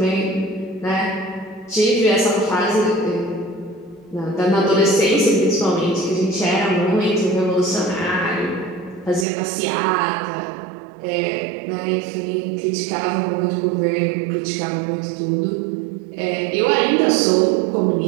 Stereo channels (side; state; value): left; drops out; at 9.2 s